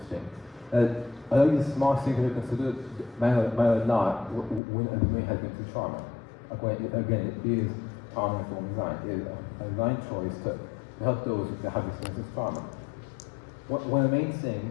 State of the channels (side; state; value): right; drops out; at 4.6 s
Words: A lot of these small things that are considered matter not when a domain has been through trauma. Again, it is trauma-informed design. It is a design choice to help those that have experienced this trauma. One of the main